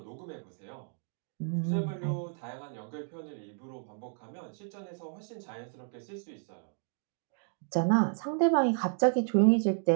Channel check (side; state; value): left; silent; 56 dB below the other